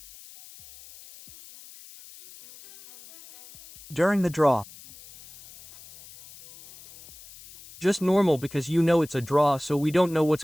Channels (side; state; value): left; noise; hiss, 20 dB below the sound